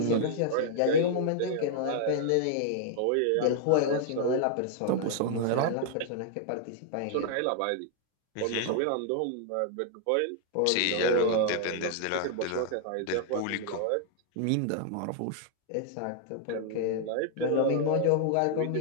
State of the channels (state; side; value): different; both; correlation 0.00